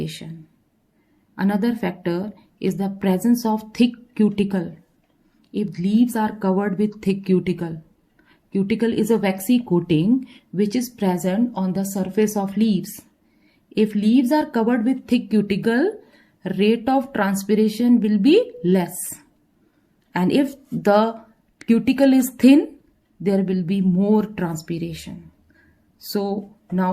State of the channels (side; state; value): both; identical; correlation 1.00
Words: Another factor is the presence of thick cuticle. If leaves are covered with thick cuticle, cuticle is a waxy coating which is present on the surface of leaves. If leaves are covered with thick cuticle, rate of transpiration will be less. And if the cuticle is thin, there will be more transpiration. So